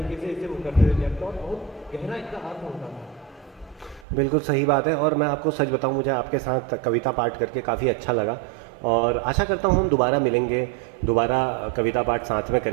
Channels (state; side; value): drops out; left; at 4.0 s